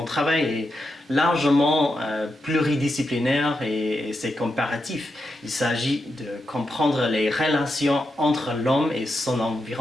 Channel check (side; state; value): both; normal; correlation 0.86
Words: travail est largement pluridisciplinaire et c'est comparatif. Il s'agit de comprendre les relations entre l'homme et son